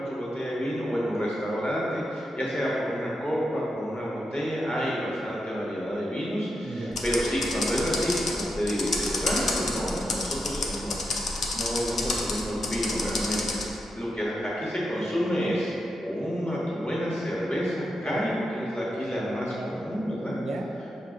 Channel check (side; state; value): both; normal; correlation 0.86